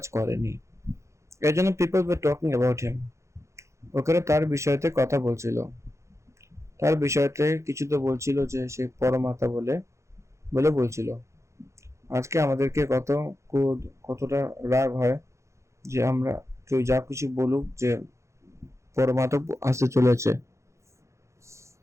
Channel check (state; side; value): late; left; 0.14 ms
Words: করেনি। এর জন্য people were talking about him, ওখানে তার বিষয়তে কথা বলছিল, তার বিষয়তে কিছু তো বলছিল যে সে পরমাত্মা বলে বলছিল। আজকে আমাদেরকে কতটা রাগ হয় যে আমরা কেউ যা কিছু বলুক যে পরমাত্মা আসতে চলেছে,